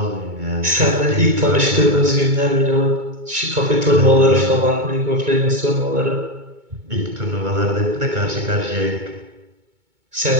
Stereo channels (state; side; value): late; left; 2.2 ms